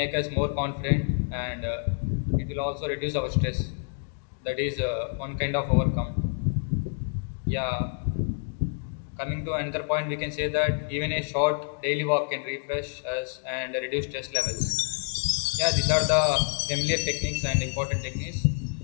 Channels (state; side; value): silent; right; digital silence